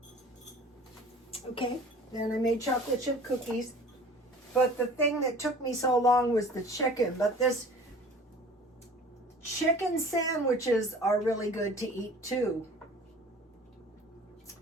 Okay, then I made chocolate chip cookies. But the thing that took me so long was the chicken. But this chicken sandwiches are really good to eat too.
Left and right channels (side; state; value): both; normal; correlation 0.45